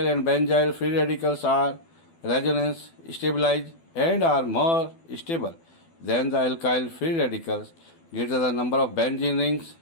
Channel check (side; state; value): right; late; 12 ms